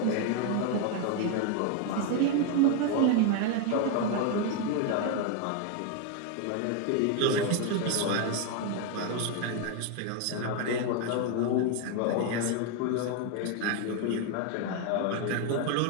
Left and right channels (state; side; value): different; both; correlation 0.01